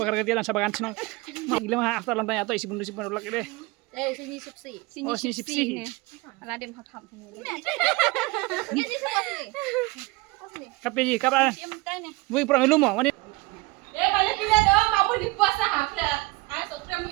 ketian sabakan senang. Gila mah after lantai atau isi bundu lagi deh. Sini sipsi. Oh sini sipsi. Ala dem thap ni. Kape kapa. Bui perang lu mau. Banyak pilihan dong, kamu di puasa hafla. Atau kamu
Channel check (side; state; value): left; quieter; 23.7 dB